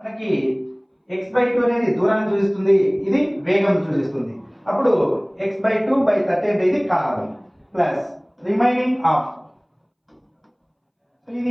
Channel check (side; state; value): both; identical; correlation 1.00